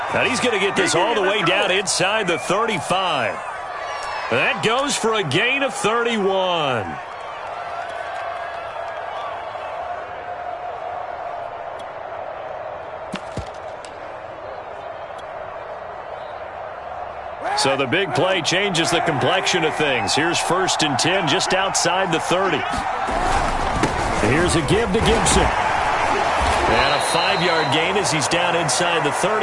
And he's going to get this all the way down inside the 35. That goes for a gain of 31. So the big play changes the complexion of things. Here's 1st and 10 just outside the 30. Here's a give to Gibson. And a 5-yard gain as he's down inside the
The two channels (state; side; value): identical; both; correlation 1.00